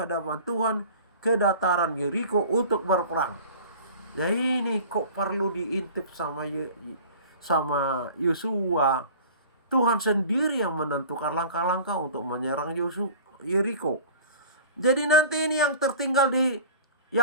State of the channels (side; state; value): both; inverted; correlation -0.41